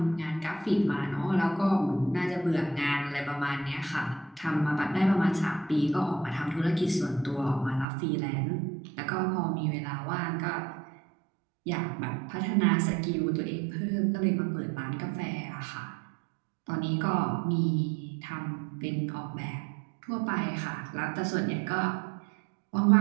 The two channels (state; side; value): drops out; left; at 7.9 s